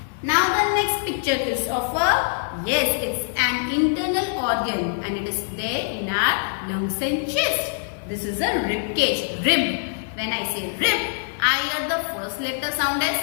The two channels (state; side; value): silent; right; 63 dB below the other